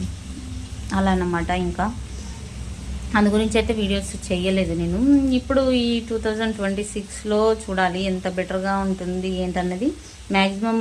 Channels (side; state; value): both; identical; correlation 1.00